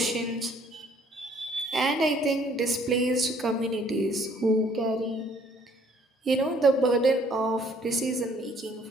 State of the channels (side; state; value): both; normal; correlation 0.61